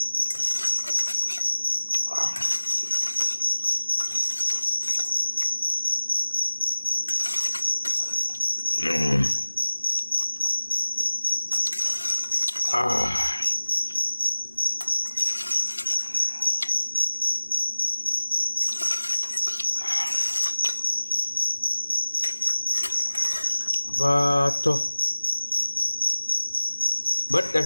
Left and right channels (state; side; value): inverted; both; correlation -1.00